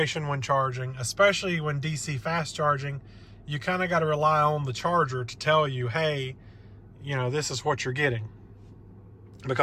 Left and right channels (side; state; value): both; identical; correlation 1.00